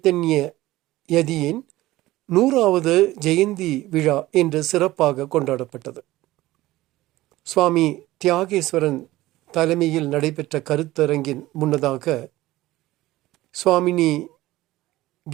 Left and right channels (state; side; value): quieter; left; 17.2 dB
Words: யதியின் 100வது ஜெயந்தி விழா என்று சிறப்பாக கொண்டாடப்பட்டது. சுவாமி தியாகேஸ்வரன் தலைமையில் நடைபெற்ற கருத்தரங்கின் முன்னதாக சுவாமினி